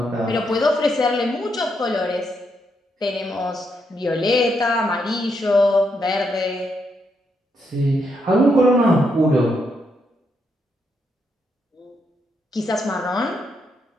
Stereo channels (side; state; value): both; normal; correlation 0.79